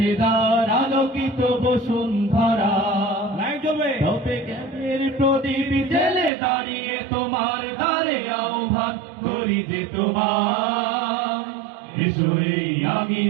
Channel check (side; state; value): left; drops out; at 6.3 s